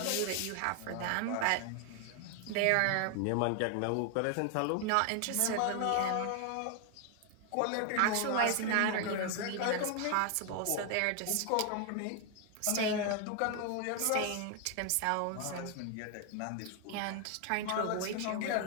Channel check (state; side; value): different; both; correlation 0.00